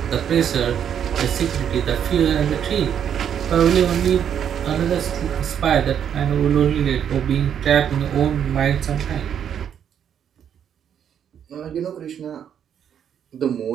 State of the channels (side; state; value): left; quieter; 8.8 dB